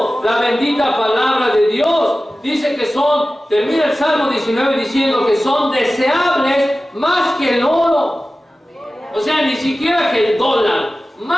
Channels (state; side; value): normal; both; correlation 0.96